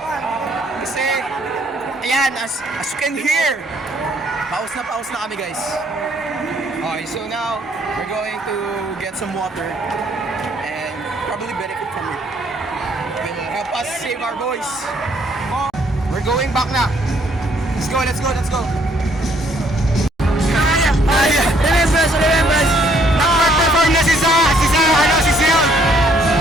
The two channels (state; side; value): normal; both; correlation 0.66